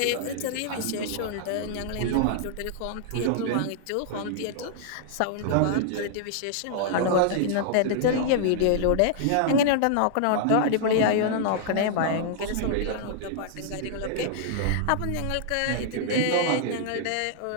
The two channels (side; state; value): both; different; correlation -0.01